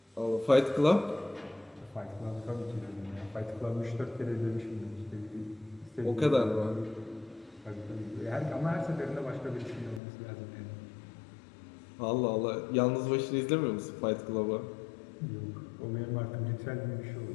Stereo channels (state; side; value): drops out; right; at 10.0 s